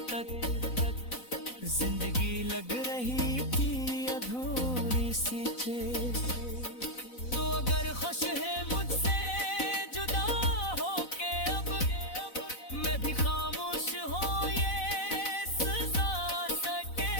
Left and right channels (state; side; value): late; right; 4.0 ms